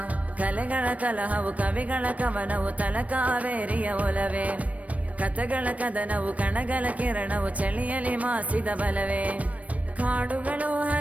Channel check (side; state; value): left; late; 0.067 ms